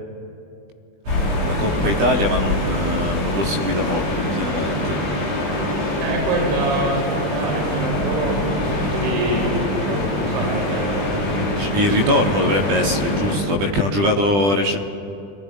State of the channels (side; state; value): left; late; 20 ms